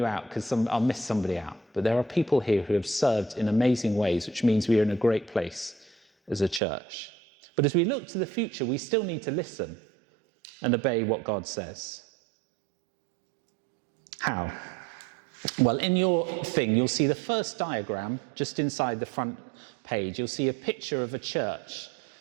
out because I'll miss somebody out, but there are people here who have served in amazing ways, which means we are in a great place as a church. But as we look to the future, we still need to listen and obey what God says. How? Well, in your thing, you'll see the first diagram just inside the front page. You'll see a picture of a church.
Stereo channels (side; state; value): left; drops out; at 6.6 s